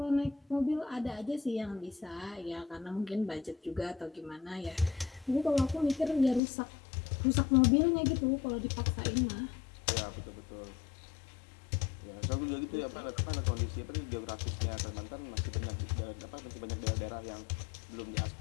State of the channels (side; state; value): right; drops out; at 6.4 s